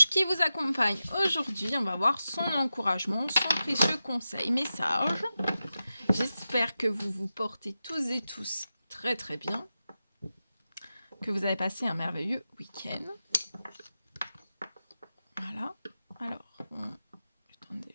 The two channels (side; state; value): both; inverted; correlation -0.92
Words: qui vous accompagne aujourd'hui. On va voir son encouragement, son précieux conseil message. J'espère que vous vous portez tous et tous très bien, que vous avez passé un merveilleux week-end. Voilà. Alors, attendez,